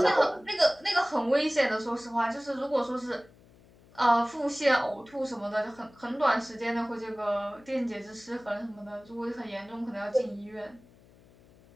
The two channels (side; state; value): left; noise; hum, 26 dB below the sound